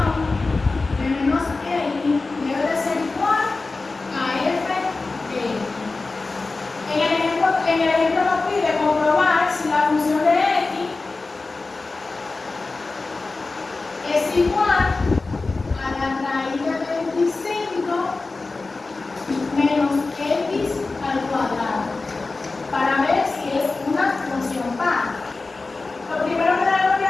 de menos x debe de ser igual a f de x. En el ejemplo nos pide comprobar si la función de x es igual a la raíz de 25 menos x al cuadrado, para ver si es una función par. Lo primero que tenemos que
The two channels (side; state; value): right; quieter; 3.6 dB